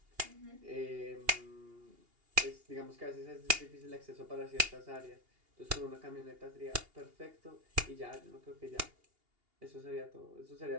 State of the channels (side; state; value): left; late; 2.8 ms